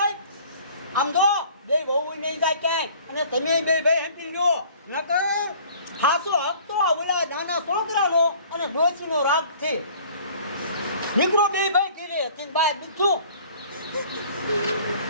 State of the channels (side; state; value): both; inverted; correlation -0.51